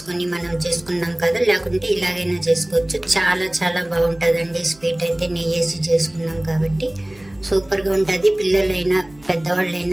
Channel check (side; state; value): right; noise; hum, 26 dB below the sound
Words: మనం చేసుకున్నాం కదా, లేకుంటే ఇలాగైనా చేసుకోవచ్చు। చాలా చాలా బాగుంటుందండి స్వీట్ అయితే, నెయ్యి వేసి చేసుకున్నాం కాబట్టి సూపర్ గా ఉంటుంది। పిల్లలైనా